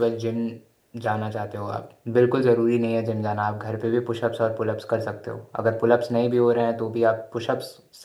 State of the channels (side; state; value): both; identical; correlation 1.00